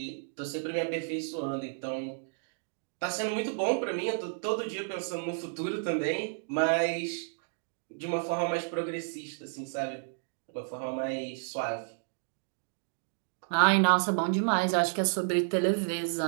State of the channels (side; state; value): left; silent; digital silence